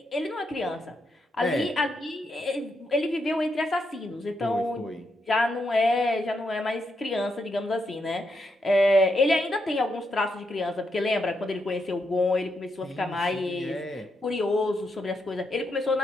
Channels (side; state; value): both; normal; correlation 0.81